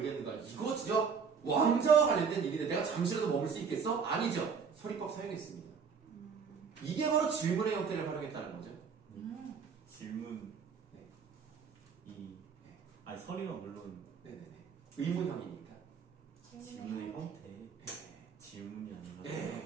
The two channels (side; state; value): left; quieter; 6.0 dB